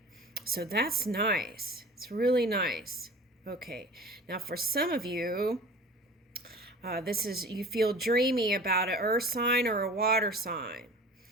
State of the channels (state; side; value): normal; both; correlation 0.40